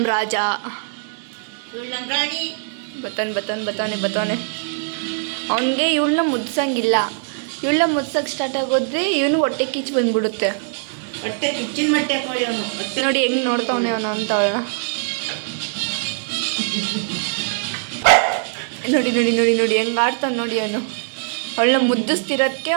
ರಾಜ ಬತ್ತಾನೆ. ಅವನಿಗೆ ಇವಳನ್ನ ಮುದ್ಸಂಗಿಲ್ಲ. ಇವಳನ್ನ ಮುದ್ಸಕ್ಕೆ ಸ್ಟಾರ್ಟ್ ಆಗೋದ್ರೆ ಇವನು ಹೊಟ್ಟೆ ಕಿಚ್ಚು ಬಂದ್ಬಿಡುತ್ತೆ. ಹೊಟ್ಟೆ ಕಿಚ್ಚಿನ ಮಟ್ಟೆ ಅವನು. ನೋಡಿ ಹೆಂಗೆ ನೋಡ್ತಾವನೆ ಅವನು ಅಂತ ಅವಳ. ನೋಡಿ ನೋಡಿ ನೋಡಿ ನೋಡಿ ಹೆಂಗೆ ಆಡ್ತಾನೆ ನೋಡಿ ಅವನು. ಅವಳನ್ನ ಮುದ್ದಿಸ್ತಿರೋದಕ್ಕೆ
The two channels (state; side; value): silent; left; digital silence